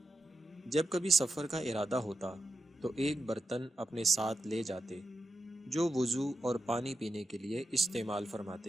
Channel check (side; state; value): both; normal; correlation 0.90